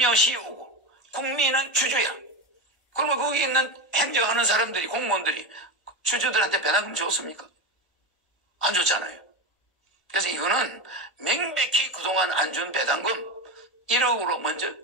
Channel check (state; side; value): late; right; 1.4 ms